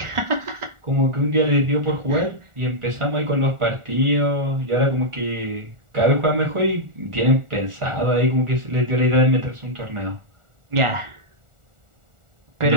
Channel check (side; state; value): left; late; 1.4 ms